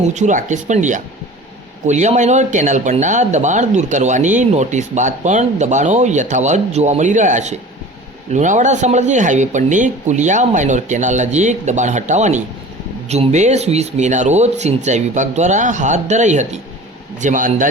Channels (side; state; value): both; normal; correlation 0.40